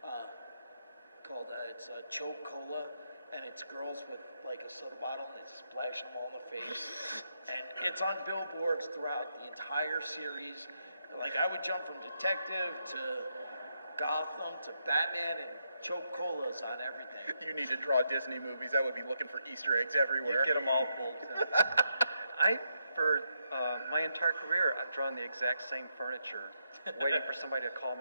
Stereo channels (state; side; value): inverted; both; correlation -0.82